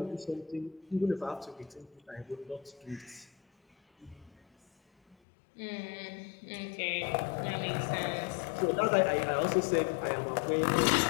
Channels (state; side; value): drops out; right; at 5.2 s